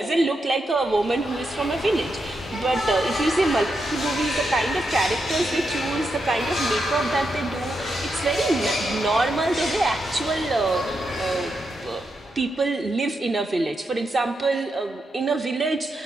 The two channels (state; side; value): normal; both; correlation 0.84